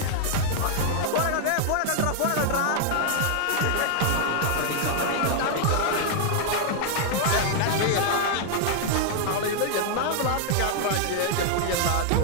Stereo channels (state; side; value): different; both; correlation 0.00